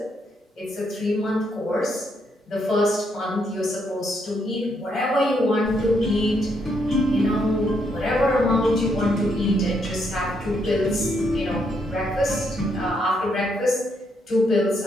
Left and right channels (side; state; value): both; normal; correlation 0.76